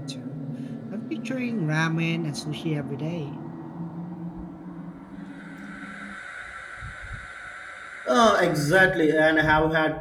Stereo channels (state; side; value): identical; both; correlation 1.00